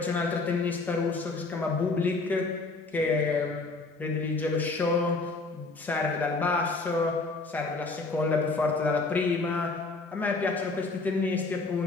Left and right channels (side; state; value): right; quieter; 3.6 dB